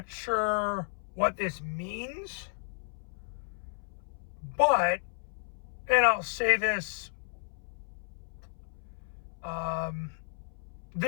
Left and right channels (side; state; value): right; silent; 56 dB below the other